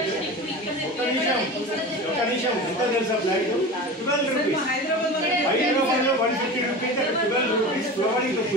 ఒక నిమిషం ఎంత తెలుసా ప్లాంట్? 12 rupees. హైదరాబాద్లో 150 rupees, 12 rupees ఫ్లవరింగ్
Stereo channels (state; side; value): normal; both; correlation 0.31